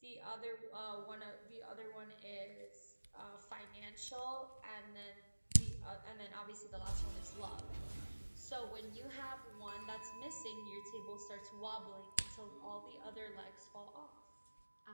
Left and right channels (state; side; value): inverted; both; correlation -1.00